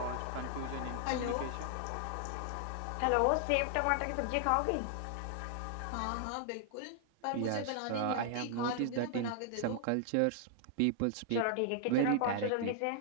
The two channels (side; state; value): both; different; correlation 0.00